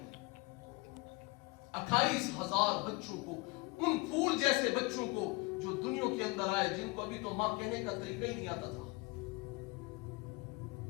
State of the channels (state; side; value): quieter; right; 25.1 dB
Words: 28,000 بچوں کو، ان پھول جیسے بچوں کو جو دنیا کے اندر آئے، جن کو ابھی تو ماں کہنے کا طریقہ ہی نہیں آتا تھا۔